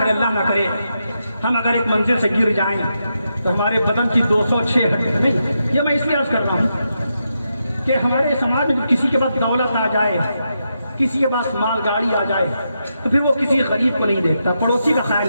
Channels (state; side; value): inverted; both; correlation -0.84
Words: اللہ نہ کرے, ہم اگر ایک منزل سے گر جائیں تو ہمارے بدن کی 206 ہڈیاں. نہیں, یہ میں اس لیے عرض کر رہا ہوں کہ ہمارے سماج میں کسی کے پاس دولت آ جائے, کسی کے پاس مال گاڑی آ جائے, تو پھر وہ کسی غریب کو نہیں دیکھتا, پڑوسی کا خیال